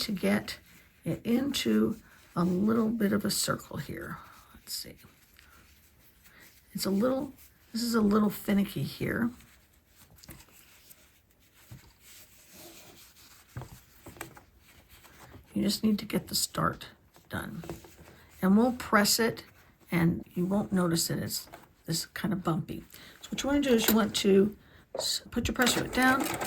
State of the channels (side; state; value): both; identical; correlation 1.00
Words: get it into a little bit of a circle here. Let's see. This is a little finicky here. You just need to get the start done. And we'll press it and you won't notice it. It's this kind of bumpy. So what you want to do is you want to put your pressure foot down,